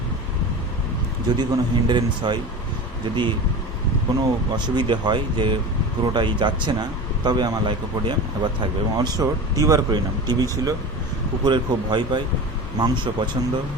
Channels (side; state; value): both; normal; correlation 0.31